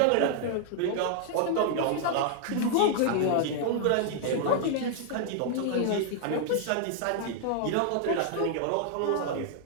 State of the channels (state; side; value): different; both; correlation -0.01